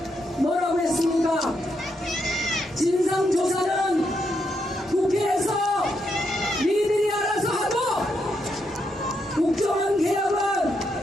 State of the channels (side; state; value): both; normal; correlation 0.80